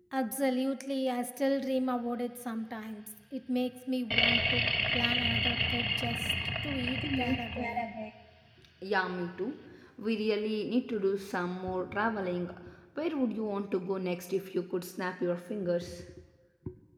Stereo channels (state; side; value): identical; both; correlation 1.00